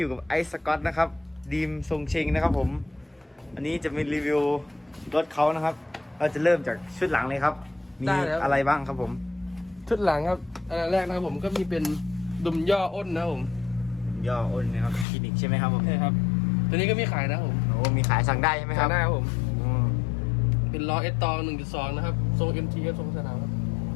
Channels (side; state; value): right; drops out; at 15.1 s